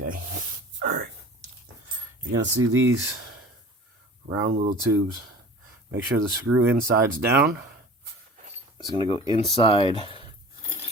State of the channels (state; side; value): normal; both; correlation 0.42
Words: alright. You're going to see these round little tubes. Make sure the screw inside's down. It's going to go inside